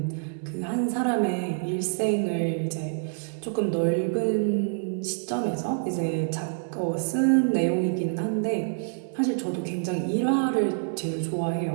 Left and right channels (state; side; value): silent; left; 60 dB below the other